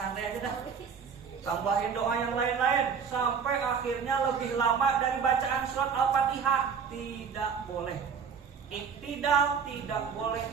aja dah. Tambahin doa yang lain-lain sampai akhirnya lebih lama dari bacaan surat Al-Fatihah. Tidak boleh. Iktidal tidak boleh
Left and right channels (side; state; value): left; quieter; 6.5 dB